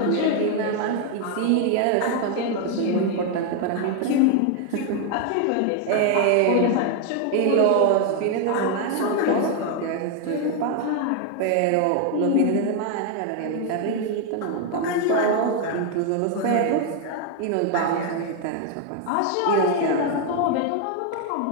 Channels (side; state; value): both; different; correlation 0.01